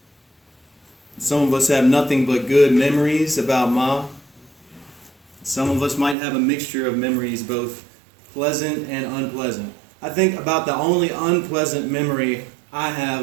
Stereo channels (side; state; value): left; drops out; at 6.2 s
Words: Some of us have nothing but good memories about Ma. Some of us might have a mixture of memories, both pleasant and unpleasant. I think about the only unpleasant memory I